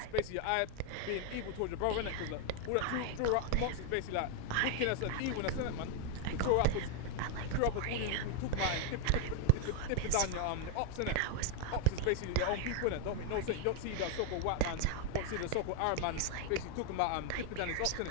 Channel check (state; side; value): different; both; correlation 0.01